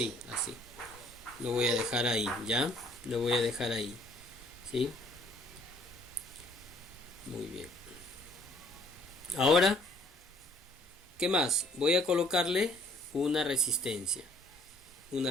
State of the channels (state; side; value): normal; both; correlation 0.60